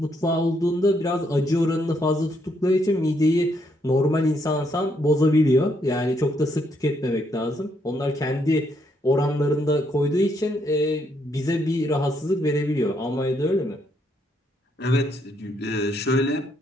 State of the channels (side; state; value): both; normal; correlation 0.74